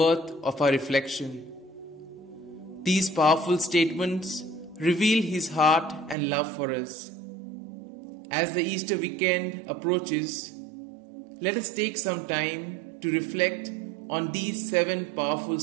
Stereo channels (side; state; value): left; drops out; at 6.2 s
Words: of our reflection. These powerful statements reveal his heart and love for us. As the Easter weekend approaches, let us take some time to reflect on these 7 powerful